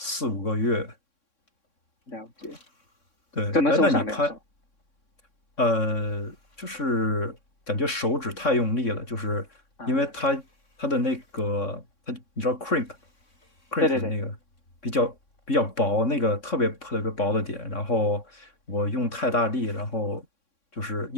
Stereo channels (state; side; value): late; right; 3.6 ms